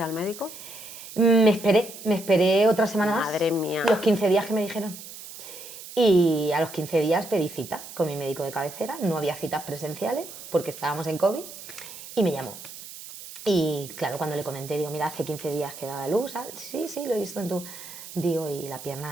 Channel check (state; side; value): noise; right; hiss, 14 dB below the sound